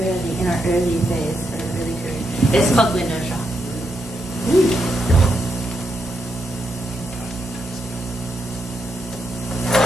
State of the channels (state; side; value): normal; both; correlation 0.82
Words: our early phase, or early career. It's called Window Shop.